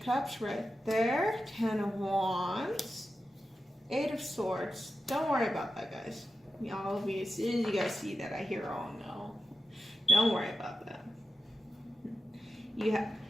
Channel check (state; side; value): normal; both; correlation 0.91